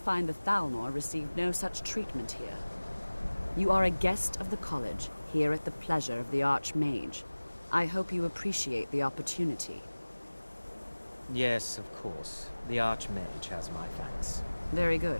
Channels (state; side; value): inverted; both; correlation -1.00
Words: the Thalmor received no such treatment here. You are a guest of the college, here at the pleasure of the Archmage. I hope you appreciate the opportunity. Yes, of course. The Archmage has my thanks. Very